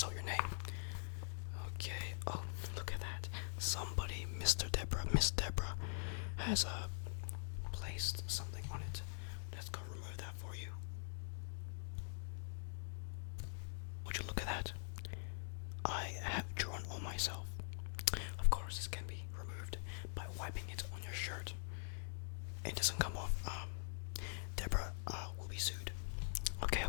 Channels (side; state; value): right; silent; digital silence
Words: your name. Okay. Oh, look at that. Somebody, Miss Deborah, has placed something on it. Let's go remove that for you. Would you look at that? I have drawn on myself. Of course, this can be removed by wiping it on your shirt. It doesn't come off. Deborah will be sued. Okay,